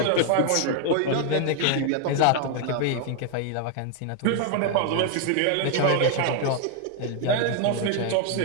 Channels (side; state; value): both; different; correlation 0.00